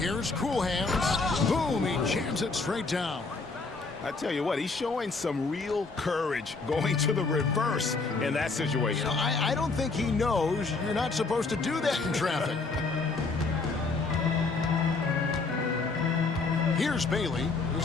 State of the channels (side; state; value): right; quieter; 4.0 dB